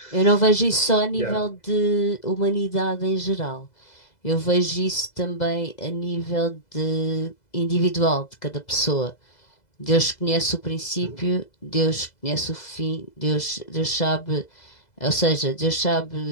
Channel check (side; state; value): right; late; 2.0 ms